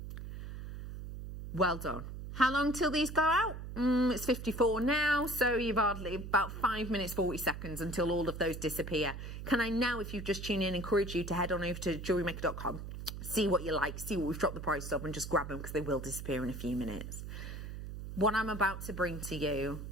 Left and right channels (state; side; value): noise; right; hum, 8 dB below the sound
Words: Well done. How long till these go out? It's 54 now, so you've hardly about 5 minutes, 40 seconds until all of those disappear. Can I now, if you've just tuned in, encourage you to head on over to JewelleryMaker.com, see what you like, see what we've dropped the price of, and just grab them because they will disappear in a few minutes. What I'm about to bring to you